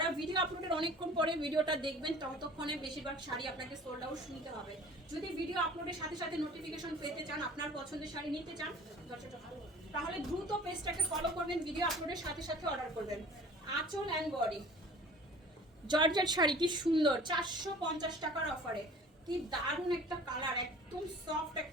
ভিডিও আপলোডের অনেকক্ষণ পরে ভিডিওটা দেখবেন ততক্ষণে বেশিরভাগ শাড়ি আপনাকে সোল্ড আউট শুনতে হবে। যদি ভিডিও আপলোডের সাথে সাথে নোটিফিকেশন পেতে চান, আপনার পছন্দের শাড়ি নিতে চান, তাহলে দ্রুত পেজটাকে ফলো করবেন, ভিডিও আপলোডের সাথে সাথে অর্ডার করবেন। আঁচল অ্যান্ড বডি জর্জেট শাড়ি, কি সুন্দর 450 টাকার অফারে। কি দারুণ একটা কালার, একদম সফট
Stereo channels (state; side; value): normal; both; correlation 0.46